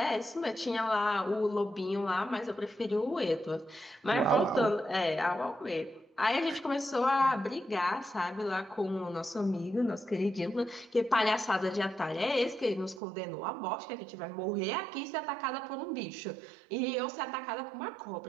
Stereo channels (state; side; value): drops out; left; at 13.0 s